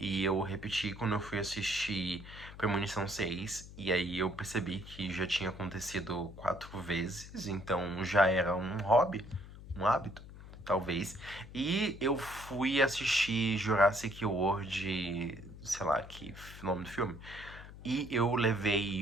eu repeti quando eu fui assistir Premonição 6. E aí eu percebi que já tinha acontecido 4 vezes. Então já era um hobby, um hábito, talvez. E eu fui assistir Jurassic World, sei lá, que nome do filme. E eu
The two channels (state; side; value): noise; left; hum, 15 dB below the sound